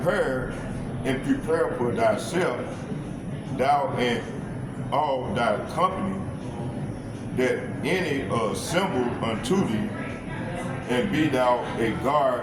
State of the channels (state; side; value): identical; both; correlation 1.00